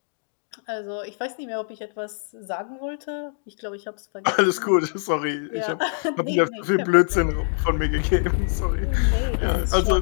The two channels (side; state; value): right; silent; digital silence